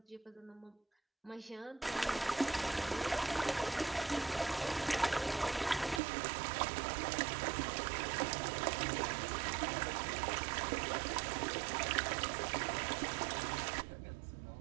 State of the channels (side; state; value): left; drops out; at 6.0 s